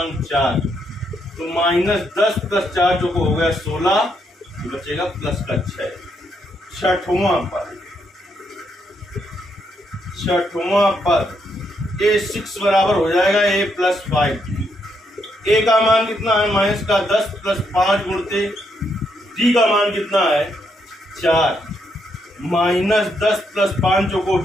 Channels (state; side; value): normal; both; correlation 0.77